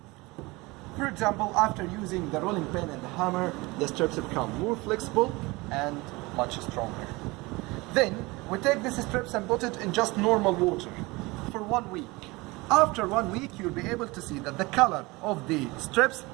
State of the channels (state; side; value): quieter; left; 23.2 dB